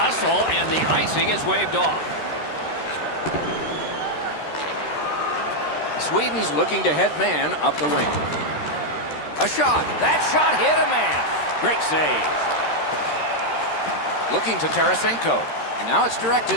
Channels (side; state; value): right; late; 13 ms